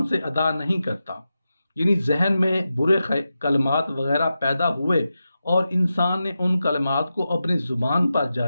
سے ادا نہیں کرتا۔ یعنی ذہن میں برے کلمات وغیرہ پیدا ہوئے اور انسان نے ان کلمات کو اپنی زبان پر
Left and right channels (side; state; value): both; inverted; correlation -0.91